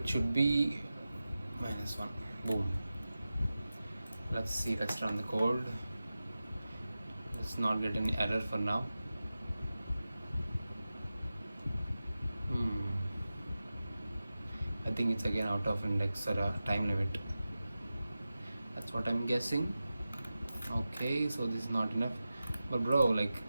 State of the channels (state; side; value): inverted; both; correlation -0.94